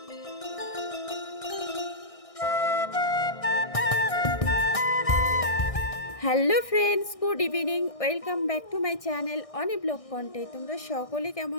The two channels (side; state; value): right; late; 1.6 ms